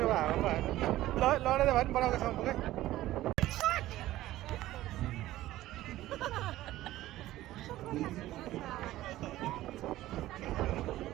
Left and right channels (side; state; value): left; quieter; 15.4 dB